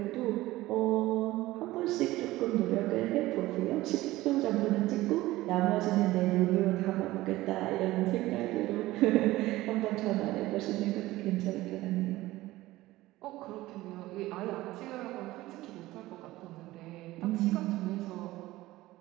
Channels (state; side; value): quieter; left; 17.5 dB